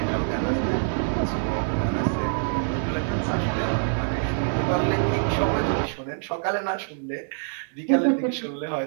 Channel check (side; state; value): left; silent; 62 dB below the other